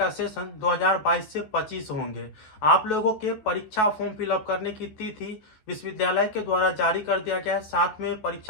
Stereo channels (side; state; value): right; late; 14 ms